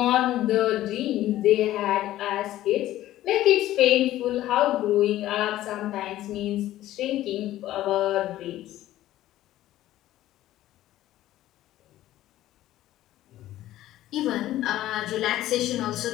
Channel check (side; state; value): right; quieter; 14.3 dB